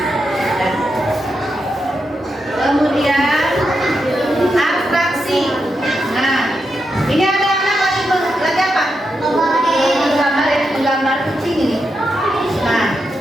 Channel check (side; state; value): both; normal; correlation 0.85